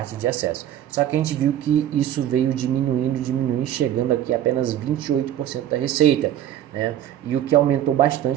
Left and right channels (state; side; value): quieter; left; 11.5 dB